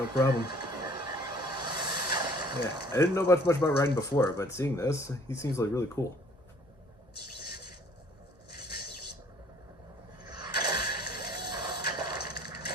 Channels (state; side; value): normal; both; correlation 0.56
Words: problem. Yeah, I didn't know much about Raiden before, but seeing this, he seems like really cool.